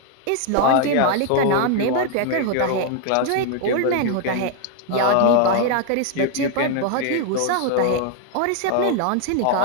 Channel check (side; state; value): both; different; correlation 0.00